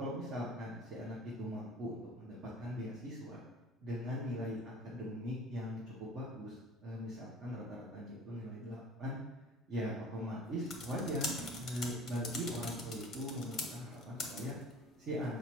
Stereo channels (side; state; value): both; normal; correlation 0.45